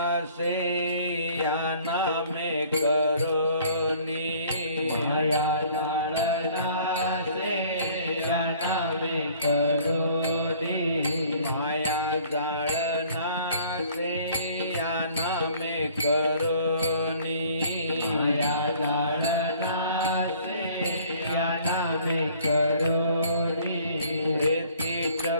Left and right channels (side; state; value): both; inverted; correlation -0.55